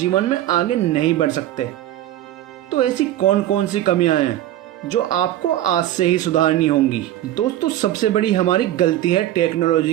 में आगे नहीं बढ़ सकते। तो ऐसी कौन कौन सी कमियां हैं जो आपको आज से ही सुधारनी होंगी? दोस्तों, सबसे बड़ी हमारी गलती है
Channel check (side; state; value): left; quieter; 13.3 dB